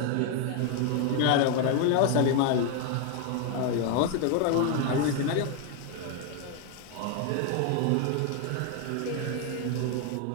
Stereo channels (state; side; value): different; both; correlation 0.01